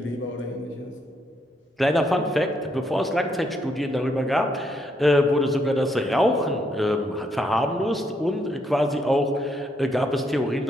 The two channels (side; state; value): both; normal; correlation 0.75